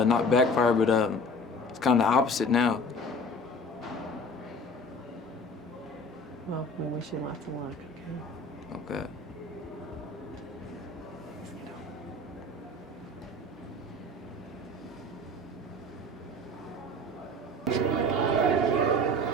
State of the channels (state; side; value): normal; both; correlation 0.42